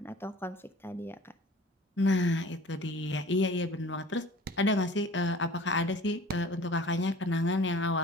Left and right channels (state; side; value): normal; both; correlation 0.45